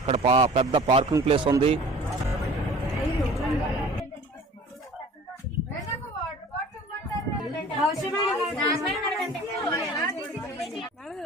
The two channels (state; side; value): normal; both; correlation 0.46